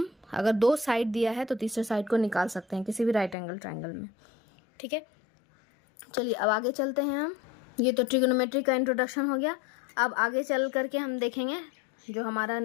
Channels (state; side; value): drops out; right; at 3.4 s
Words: अगर 2 साइड दिया है तो तीसरे साइड को निकाल सकते हैं किसी भी राइट एंगल ट्रायंगल में। ठीक है, चलिए अब आगे चलते हैं हम। ये तो ट्रिग्नोमेट्री का इंट्रोडक्शन हो गया। अब आगे चल करके हम देखेंगे जो हमारा